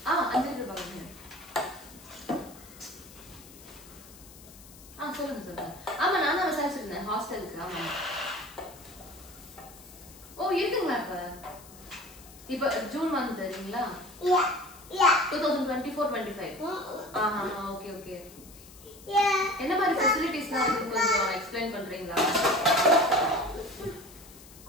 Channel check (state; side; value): noise; left; hiss, 20 dB below the sound